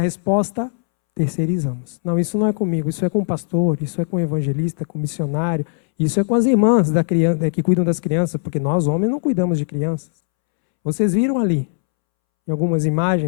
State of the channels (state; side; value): silent; right; 66 dB below the other